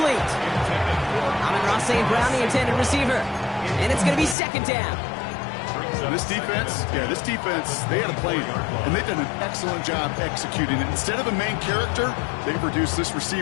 Amon-Ra St. Brown, the intended receiver. And it's going to be second down. This defense, they had a plan. And they've done an excellent job executing it. Instead of a main character, they've reduced this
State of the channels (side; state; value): right; drops out; at 4.4 s